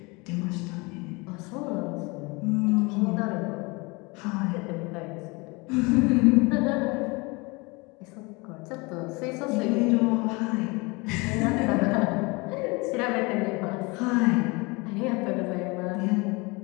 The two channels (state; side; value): quieter; right; 26.6 dB